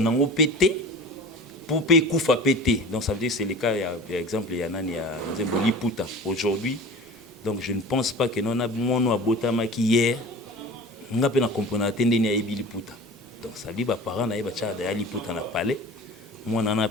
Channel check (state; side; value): normal; both; correlation 0.38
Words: péter pour payer koufa péter. Donc ça veut dire que c'est le cas, il y a par exemple il y a nani ya nzembo liputa aujourd'hui. Donc je ne pense pas que non a mono abotama qui hier nga pe na comprendre atende ni ayebi liputa. Donc ça dit ba parents na yeba cha da liputa na palais. Moi na